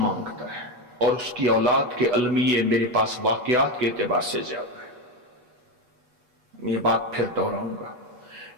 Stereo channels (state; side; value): late; left; 8.2 ms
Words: है और उसकी औलाद के अलमिये मेरे पास वाकयात के एतबार से ज्यादा है। मैं ये बात फिर दोहराऊंगा,